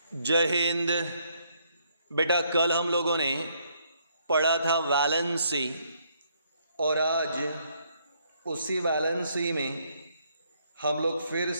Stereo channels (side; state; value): both; inverted; correlation -0.70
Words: जय हिंद। बेटा, कल हम लोगों ने पढ़ा था वैलेंसी और आज उसी वैलेंसी में हम लोग फिर